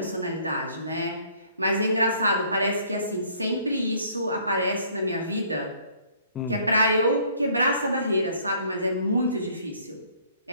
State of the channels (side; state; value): both; inverted; correlation -0.60